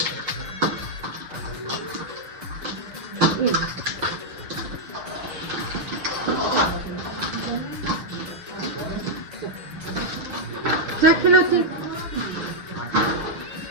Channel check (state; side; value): late; left; 6.9 ms